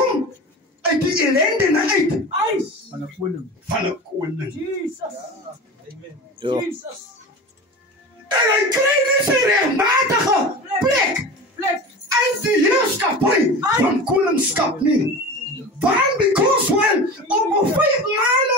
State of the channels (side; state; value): both; normal; correlation 0.32